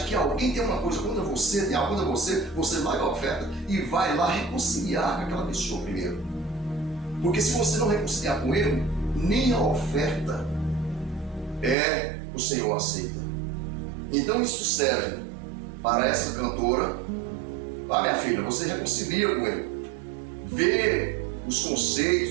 que alguém tem uma coisa contra você, tem algo contra você larga a oferta e vai lá reconciliar com aquela pessoa primeiro. Porque se você não reconciliar com ele, nem a oferta o Senhor aceita. Então isso serve para essa cantora. Minha filha, você reconcilia com ele, vê os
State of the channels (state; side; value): drops out; left; at 11.8 s